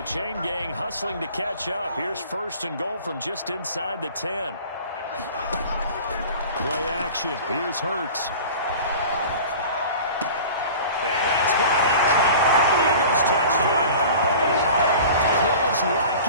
chain gang hustling to catch up. Here's 1st and goal from just inside the 10. Play action. Here's Hurts. And that's going to be caught for the Eagles touchdown.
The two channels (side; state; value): both; inverted; correlation -0.40